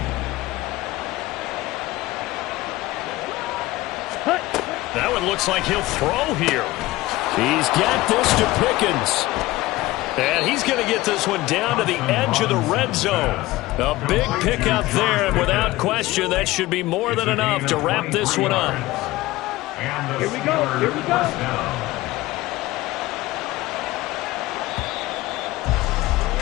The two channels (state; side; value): quieter; right; 18.5 dB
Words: That one looks like he'll throw here. He's got this to Pickens. And he's going to get this one down to the edge of the red zone. A big pickup there, and without question, that should be more than enough to wrap this one up. Here we go. Here we go.